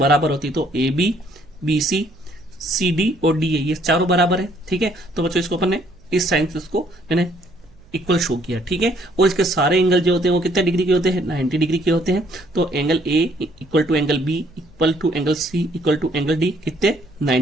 होती है। तो A B, B C, C D और डी ए ये चारों बराबर है, ठीक है। तो बच्चों इसको अपन ने इस साइन से इसको मैंने इक्वल शो किया, ठीक है। और इसके सारे एंगल जो होते हैं वो कितने डिग्री के होते हैं, 90 डिग्री के होते हैं। तो angle A equal to angle B equal to angle C equal to angle D कितने,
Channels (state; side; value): noise; right; hum, 28 dB below the sound